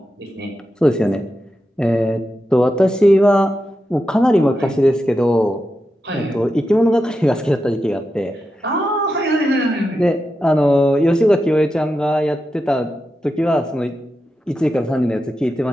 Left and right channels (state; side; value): normal; both; correlation 0.89